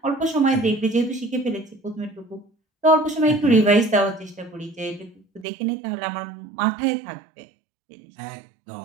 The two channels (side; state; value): left; drops out; at 5.5 s